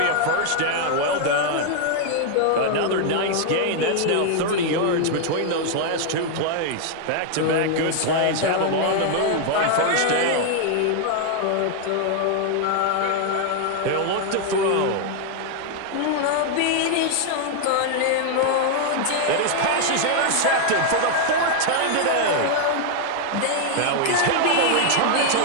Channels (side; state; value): both; different; correlation 0.00